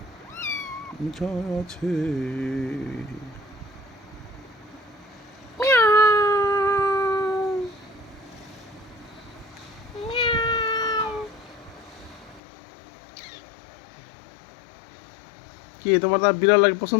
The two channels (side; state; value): right; drops out; at 12.4 s